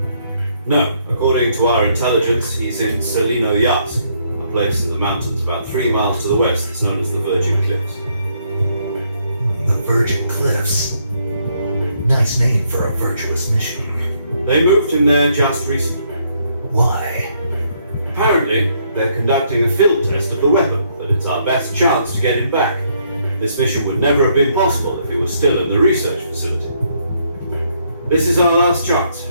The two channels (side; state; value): both; inverted; correlation -0.71